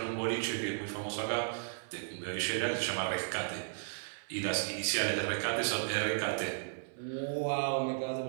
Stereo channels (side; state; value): left; silent; 55 dB below the other